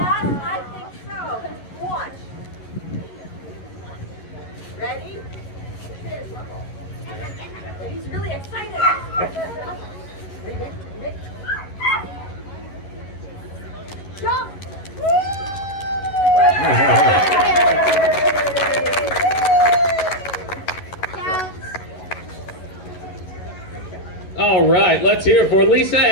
I think so. Watch. Ready? He's really excited. Mick. Jump! Counts. All right, let's hear it for Lisa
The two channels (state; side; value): late; right; 11 ms